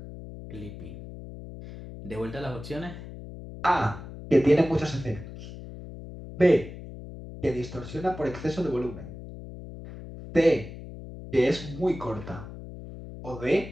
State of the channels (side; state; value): left; noise; hum, 12 dB below the sound